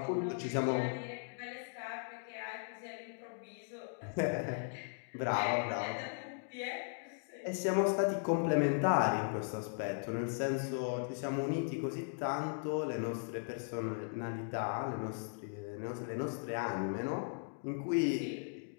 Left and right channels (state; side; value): silent; right; digital silence